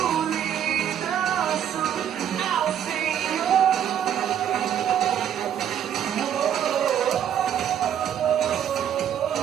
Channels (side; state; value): left; quieter; 9.6 dB